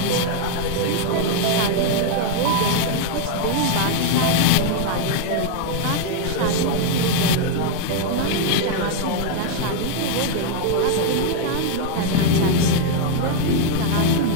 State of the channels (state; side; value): different; both; correlation 0.01